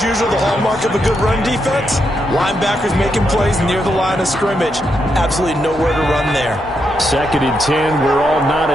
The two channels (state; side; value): normal; both; correlation 0.81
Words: usual, the hallmark of a good run defense, linebackers making plays near the line of scrimmage. Absolutely nowhere to run there. 2nd and 10. We're all